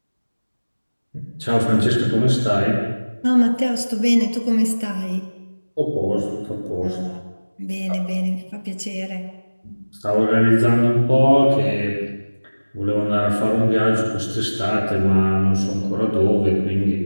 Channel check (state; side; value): inverted; both; correlation -1.00